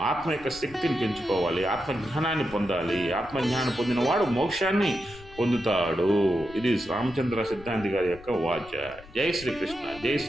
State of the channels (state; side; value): noise; left; rumble, 20 dB below the sound